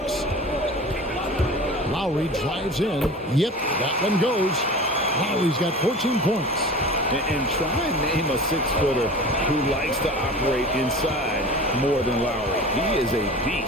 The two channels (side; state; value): both; normal; correlation 0.37